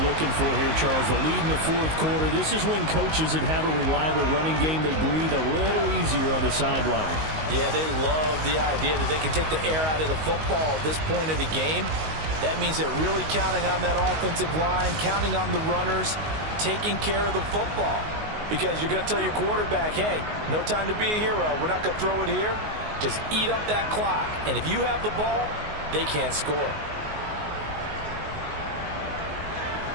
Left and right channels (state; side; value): late; left; 19 ms